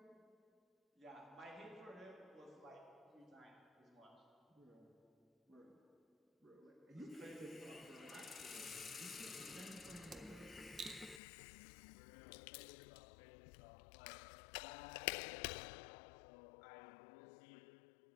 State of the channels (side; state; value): right; drops out; at 11.2 s